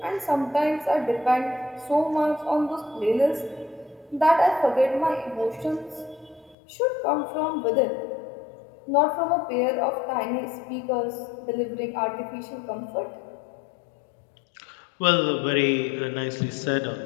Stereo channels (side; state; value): right; drops out; at 6.6 s